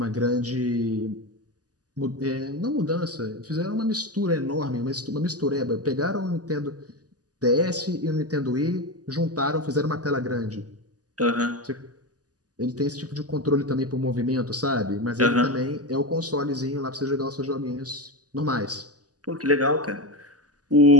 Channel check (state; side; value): late; left; 0.67 ms